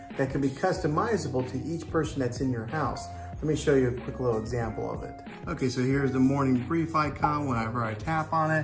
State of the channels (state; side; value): identical; both; correlation 1.00